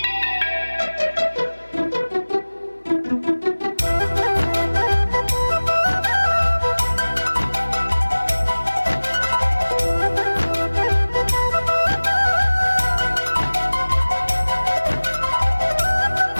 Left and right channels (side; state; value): both; inverted; correlation -1.00